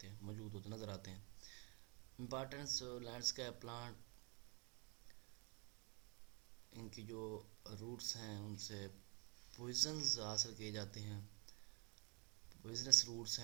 ہیں، موجود ہوتے نظر آتے ہیں. امپارٹنس لینڈسکیپ پلانٹ، ان کی جو روٹس ہیں ان سے پوائزنز حاصل کیے جاتے ہیں. پوائزنس روٹس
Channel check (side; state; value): left; quieter; 33.0 dB